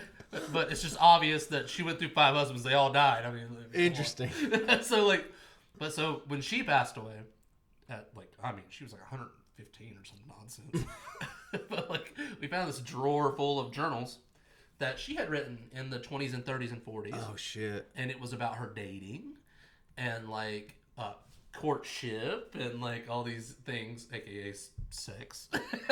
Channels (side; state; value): both; identical; correlation 1.00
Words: But it's just obvious that she went through 5 husbands. They all died. I mean, interesting. So when she passed away, she was like 115 or some nonsense. But like, we found this drawer full of journals that she had written in the 20s and 30s and 40s. Oh shit! And it was about her dating, and like courtship, and like all these things, aka sex.